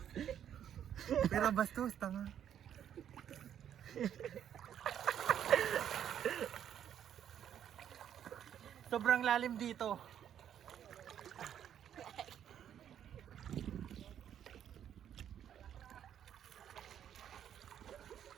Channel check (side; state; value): left; quieter; 9.7 dB